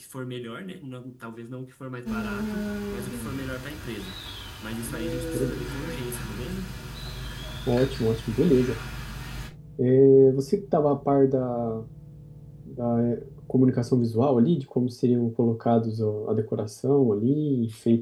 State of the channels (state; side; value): identical; both; correlation 1.00